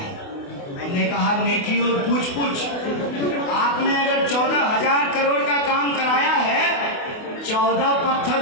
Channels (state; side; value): late; right; 28 ms